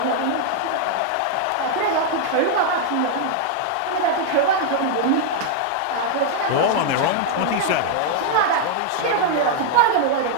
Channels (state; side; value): different; both; correlation -0.01